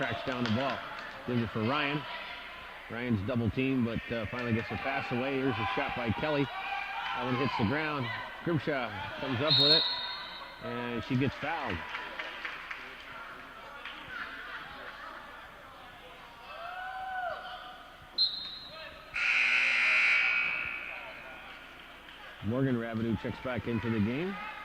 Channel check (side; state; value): both; identical; correlation 1.00